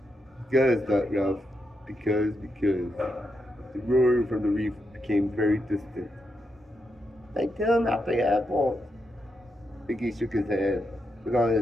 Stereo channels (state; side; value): normal; both; correlation 0.84